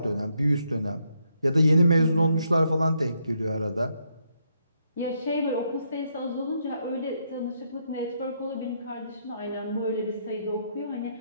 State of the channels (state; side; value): inverted; both; correlation -0.76